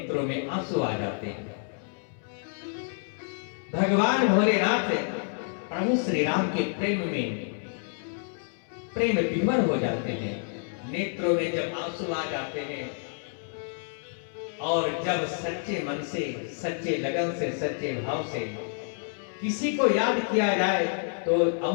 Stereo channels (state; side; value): silent; right; digital silence